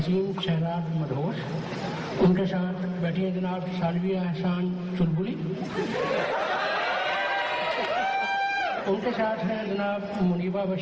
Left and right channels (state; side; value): identical; both; correlation 1.00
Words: शहराज मदहोश, उनके साथ बैठी हैं जनाब सालविया एहसान चुलबुली, उनके साथ हैं जनाब मुनीबा